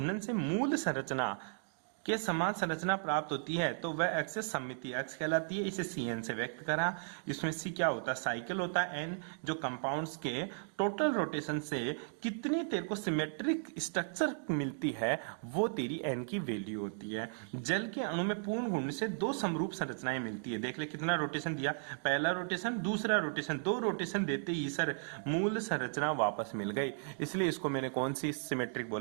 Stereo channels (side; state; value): left; silent; digital silence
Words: से मूल संरचना के समान संरचना प्राप्त होती है तो वह एक्सेस सममिति अक्ष कहलाती है। इसे CN से व्यक्त करा। इसमें C क्या होता है, साइकिल होता है। N जो कंपाउंड्स के टोटल रोटेशन से कितनी तेरे को सिमेट्रिक स्ट्रक्चर मिलती है वो तेरी N की वैल्यू होती है। जल के अणु में पूर्ण घूर्णन से 2 समरूप संरचनाएं मिलती है। देख ले कितना रोटेशन दिया, पहला रोटेशन, दूसरा रोटेशन, 2 रोटेशन देते ही सर मूल संरचना वापस मिल गई। इसलिए इसको मैंने कौन सी सिमेट्रिक